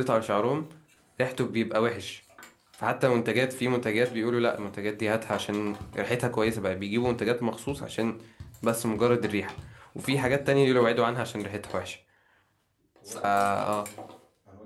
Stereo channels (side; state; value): both; identical; correlation 1.00